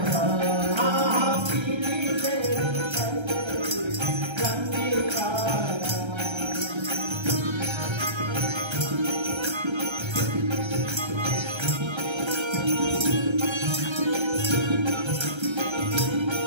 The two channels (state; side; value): late; left; 1.3 ms